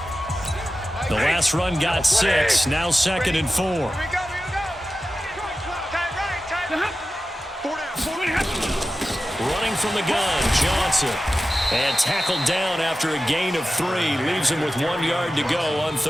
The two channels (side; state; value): both; normal; correlation 0.93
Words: The last run got 6, now 2nd and 4. Running from the gun, Johnson. And tackled down after a gain of 3. Leaves him with 1 yard to go on